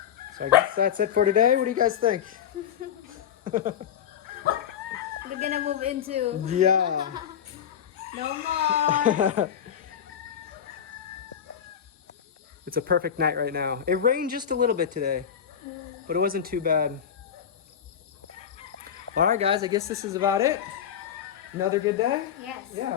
So I guess that's it for today. What do you guys think? We're gonna move into Yeah. no more. It's a perfect night right now. It rained just a little bit today, but it wasn't too bad. All right, guys, I guess this is about it. Another good day? Yes. Yeah,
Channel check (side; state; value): right; quieter; 8.8 dB